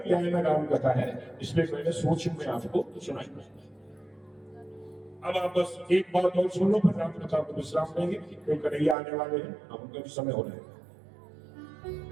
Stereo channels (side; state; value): left; drops out; at 9.0 s